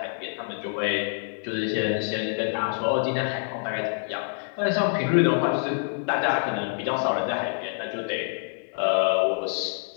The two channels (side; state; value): right; silent; digital silence